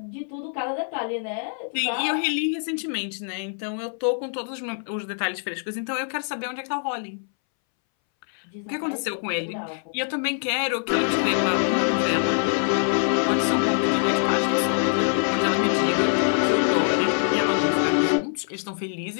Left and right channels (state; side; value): silent; right; 62 dB below the other